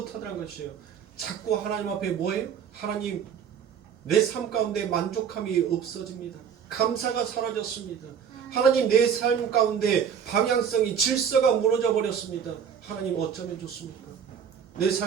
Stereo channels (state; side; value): quieter; left; 7.7 dB